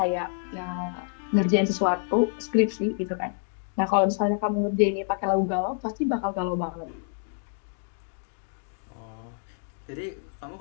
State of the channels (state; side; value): silent; right; 60 dB below the other